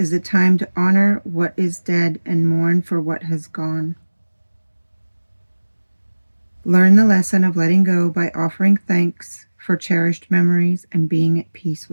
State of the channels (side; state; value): both; inverted; correlation -1.00